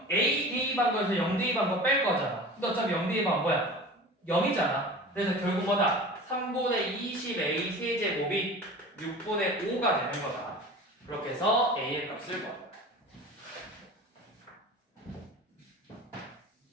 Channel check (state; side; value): normal; both; correlation 0.37